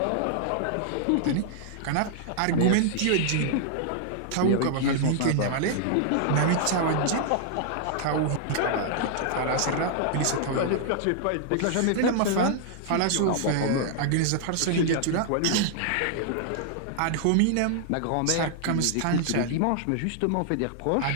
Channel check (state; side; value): different; both; correlation -0.01